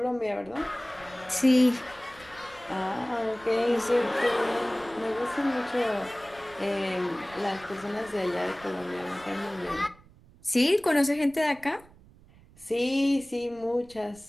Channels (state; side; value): noise; right; rumble, 24 dB below the sound